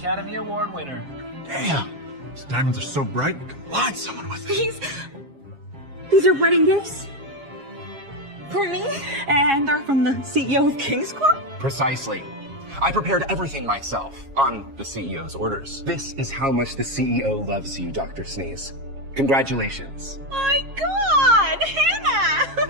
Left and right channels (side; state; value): left; late; 7.3 ms